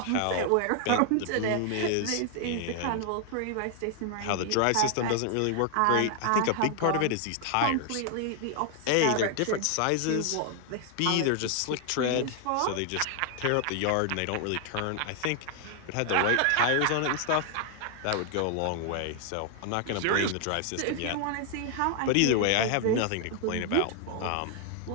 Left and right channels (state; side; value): different; both; correlation 0.00